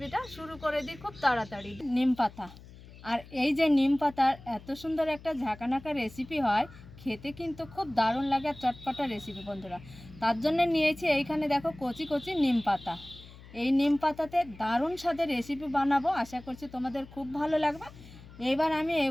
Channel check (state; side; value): noise; left; hum, 19 dB below the sound